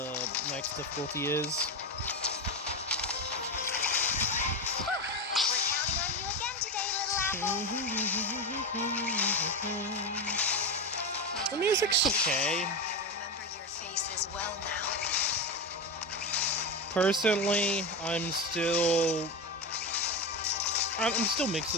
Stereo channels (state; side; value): normal; both; correlation 0.17